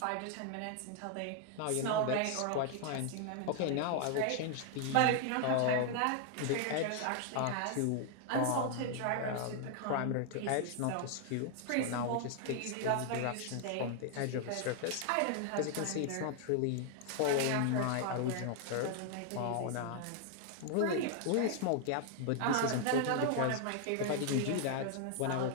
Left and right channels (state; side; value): different; both; correlation 0.00